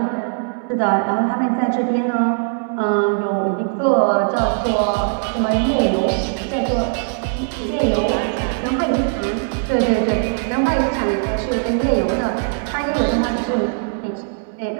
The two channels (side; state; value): left; silent; digital silence